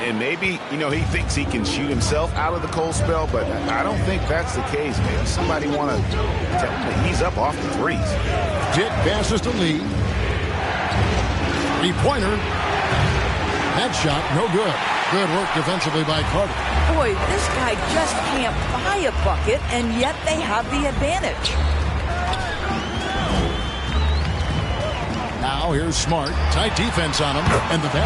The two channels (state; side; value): identical; both; correlation 1.00